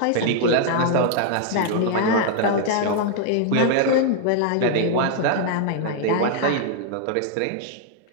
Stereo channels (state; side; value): different; both; correlation 0.00